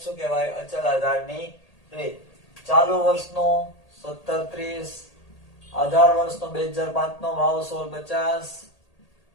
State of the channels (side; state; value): right; late; 1.8 ms